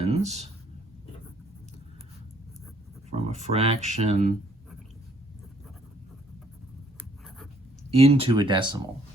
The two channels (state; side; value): normal; both; correlation 0.65